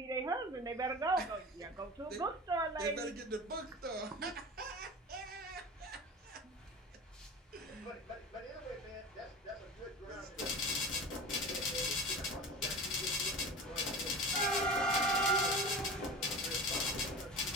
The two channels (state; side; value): normal; both; correlation 0.33